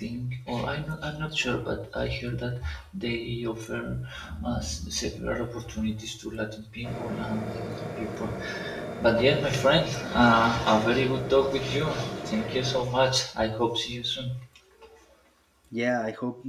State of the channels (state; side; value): identical; both; correlation 1.00